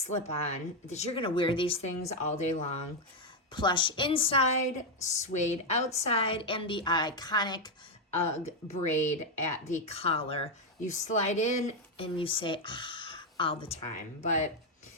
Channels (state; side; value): normal; both; correlation 0.04